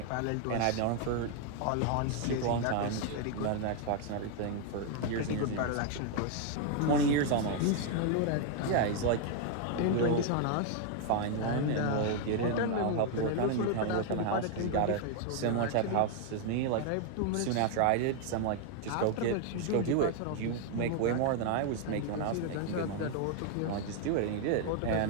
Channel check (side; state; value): both; different; correlation 0.00